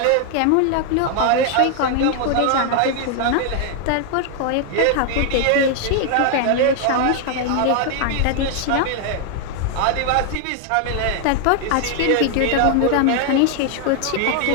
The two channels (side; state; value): both; different; correlation 0.00